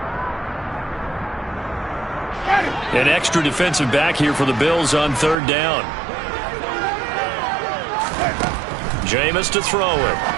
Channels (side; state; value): left; drops out; at 5.4 s